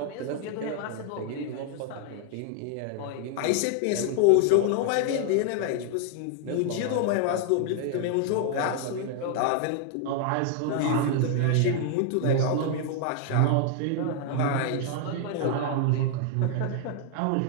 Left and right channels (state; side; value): different; both; correlation 0.00